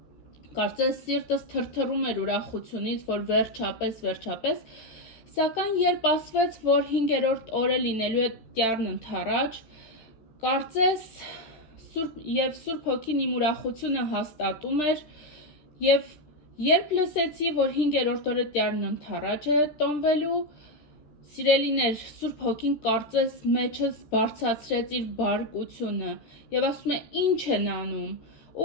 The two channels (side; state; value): right; late; 13 ms